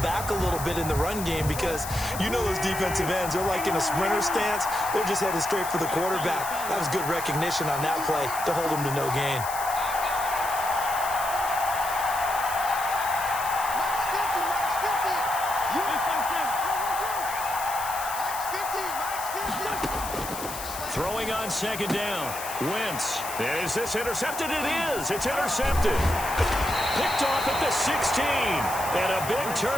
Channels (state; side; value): noise; left; hiss, 9 dB below the sound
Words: back a little bit in the run game because you know those defensive ends, they're like in a sprinter stance, they're just headed straight for the quarterback. That was good recognition on that play to hold them to no gain. Throwing on second down. Wentz. Is this intercepted? It is. It's intercepted. Picked off at the 16. And a big